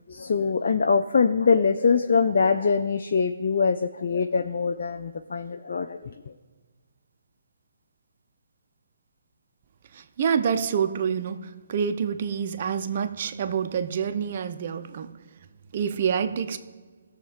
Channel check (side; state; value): both; inverted; correlation -0.71